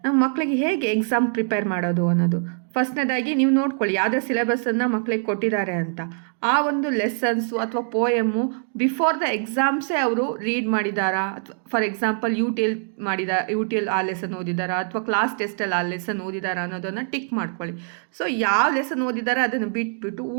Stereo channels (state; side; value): silent; left; 63 dB below the other